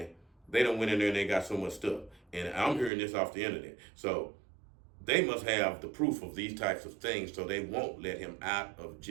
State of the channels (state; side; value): drops out; left; at 2.9 s